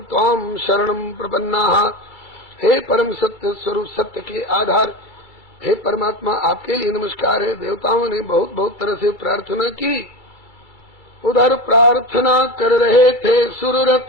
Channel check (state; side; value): late; right; 2.3 ms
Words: त्वाम शरणम प्रपन्ना। हे परम सत्य स्वरूप, सत्य के आधार, हे परमात्मा, आपके लिए नमस्कार है। देवताओं ने बहुत बहुत तरह से प्रार्थना की। उधर प्रार्थना कर रहे थे